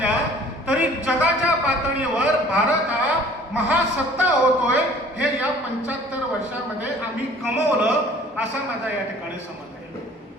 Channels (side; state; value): both; normal; correlation 0.51